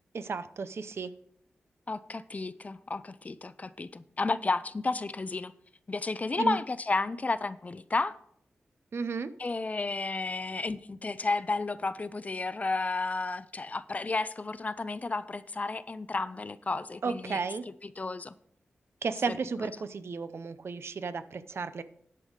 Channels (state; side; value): normal; both; correlation 0.81